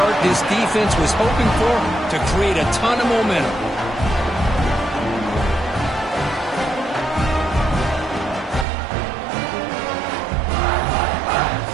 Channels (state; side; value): drops out; left; at 8.7 s